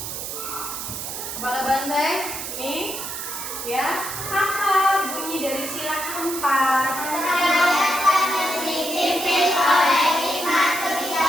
Kepala banteng ini ya, apa bunyi dari sila keempat? Dipimpin oleh hikmat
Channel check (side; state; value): right; noise; hiss, 6 dB below the sound